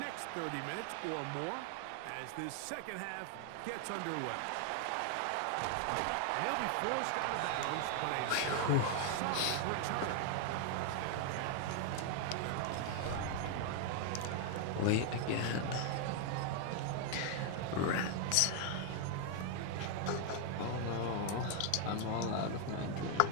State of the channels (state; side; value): different; both; correlation 0.00